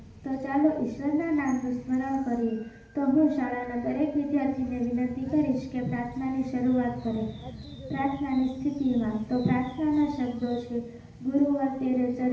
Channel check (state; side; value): identical; both; correlation 1.00